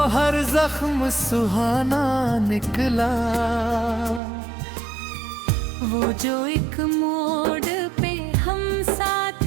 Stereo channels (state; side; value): drops out; left; at 4.2 s